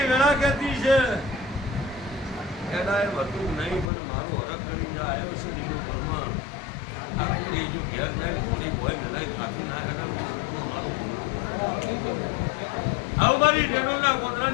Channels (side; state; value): right; drops out; at 3.9 s